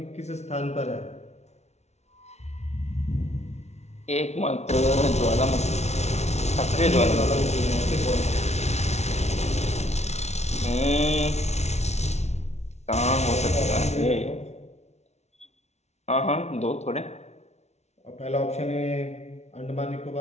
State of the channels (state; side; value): late; right; 0.32 ms